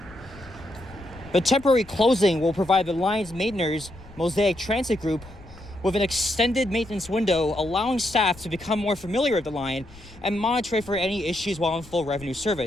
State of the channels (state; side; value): noise; left; rumble, 21 dB below the sound